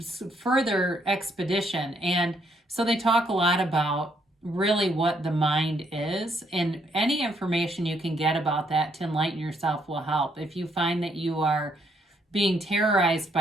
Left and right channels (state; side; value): normal; both; correlation 0.71